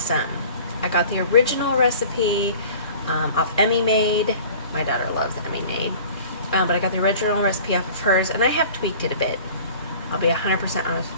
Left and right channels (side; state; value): both; inverted; correlation -0.45